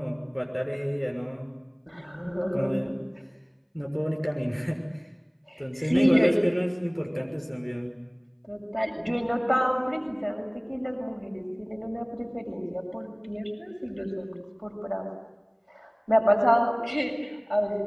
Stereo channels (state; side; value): identical; both; correlation 1.00